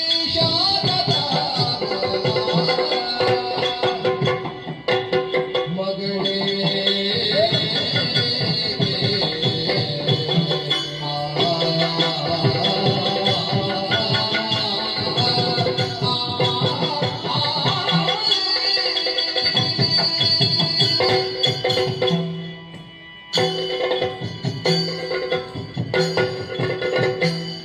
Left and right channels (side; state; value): both; identical; correlation 1.00